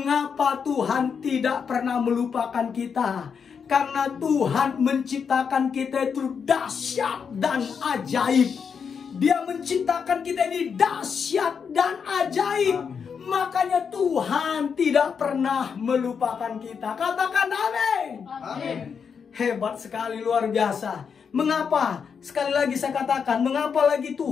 Tuhan tidak pernah melupakan kita? Karena Tuhan menciptakan kita itu dahsyat dan ajaib. Dia menciptakan kita ini dahsyat dan ajaib. Makanya Tuhan tidak pernah melupakan kita. Katakan amin. Amin. Hebat sekali, luar biasa. Mengapa? Sekali lagi saya katakan, mengapa lagi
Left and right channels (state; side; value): quieter; right; 6.5 dB